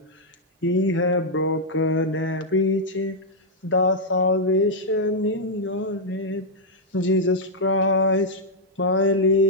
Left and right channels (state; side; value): normal; both; correlation -0.05